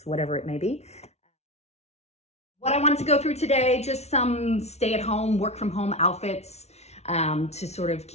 whatever it may be. What I wanted to go through today, just some stay-at-home, work-from-home outfits to sort of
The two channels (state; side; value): late; right; 0.31 ms